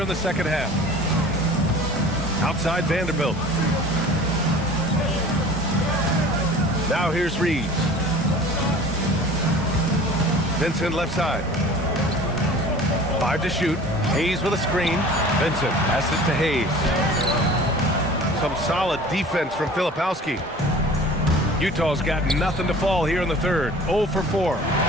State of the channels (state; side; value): normal; both; correlation 0.43